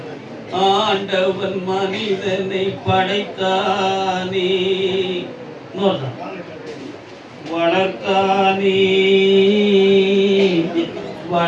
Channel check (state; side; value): identical; both; correlation 1.00